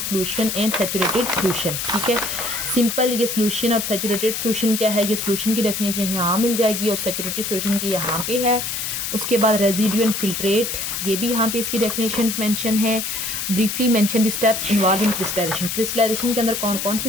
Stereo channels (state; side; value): noise; left; hiss, 3 dB below the sound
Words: and saturated solution. ठीक है, सिंपल। ये सोल्यूशन और सैचुरेटेड सोल्यूशन क्या है? ये सोल्यूशन की डेफिनेशन यहाँ मिल जाएगी और सैचुरेटेड सोल्यूशन की यहाँ पे है। उसके बाद रेजिड्यू एंड फिल्ट्रेट, ये भी यहाँ पे इसकी डेफिनेशंस मेंशन है। Briefly mention the steps involve in crystallization. Crystallization के अंदर कौन कौन से